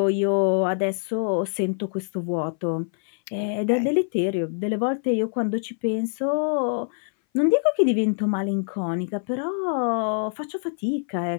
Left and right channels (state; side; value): silent; right; 59 dB below the other